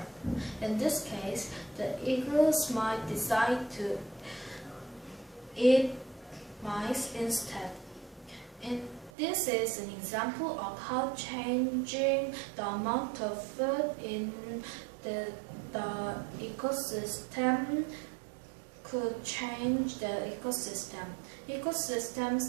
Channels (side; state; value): left; drops out; at 9.1 s